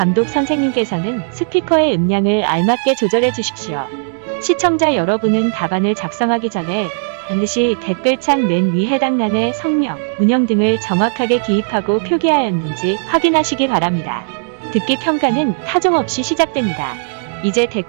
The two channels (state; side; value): silent; left; digital silence